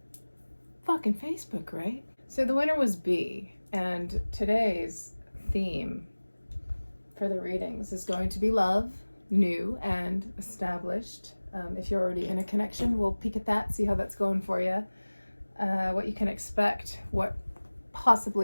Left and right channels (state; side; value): inverted; both; correlation -1.00